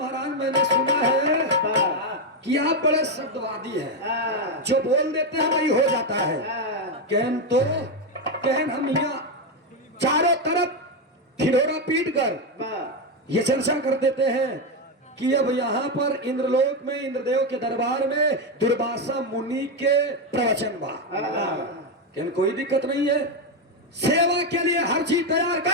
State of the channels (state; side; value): normal; both; correlation 0.07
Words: मैंने सुना है कि आप बड़े शब्दवादी हैं, जो बोल देते हैं वही हो जाता है। कहन तो कहन हम यहाँ चारों तरफ ठिठोरा पीट कर ये चर्चा कर देते हैं कि अब यहाँ पर इंद्रलोक में इंद्रदेव के दरबार में दुर्वासा मुनि के प्रवचन बा। कहन कोई दिक्कत नहीं है, सेवा के लिए हर चीज तैयार